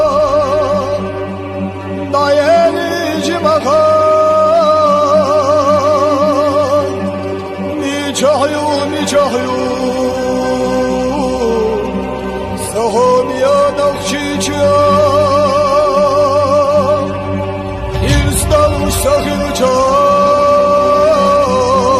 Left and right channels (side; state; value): both; identical; correlation 1.00